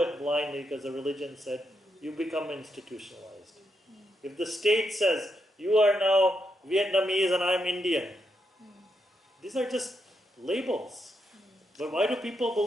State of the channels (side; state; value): both; normal; correlation 0.81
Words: blindly because the religion said, you become institutionalized. If the state says, you are now Vietnamese and I'm Indian, these are just labels. But why do people